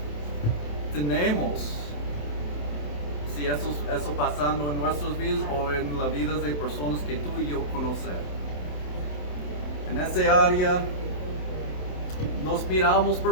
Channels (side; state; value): right; late; 27 ms